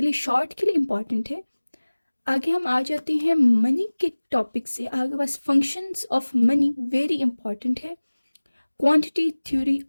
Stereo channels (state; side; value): inverted; both; correlation -1.00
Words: लिए शॉर्ट के लिए इम्पॉर्टेंट है. आगे हम आ जाते हैं मनी के टॉपिक से. आगे बस functions of money very important है. Quantity theory